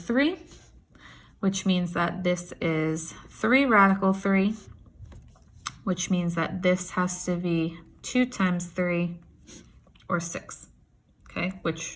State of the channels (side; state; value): both; identical; correlation 1.00